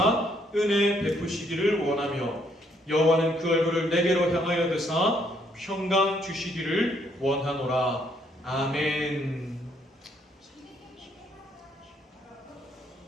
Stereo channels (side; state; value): both; normal; correlation 0.70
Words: 은혜 베푸시기를 원하며 여호와는 그 얼굴을 내게로 향하여 드사 평강 주시기를 원하노라. 아멘.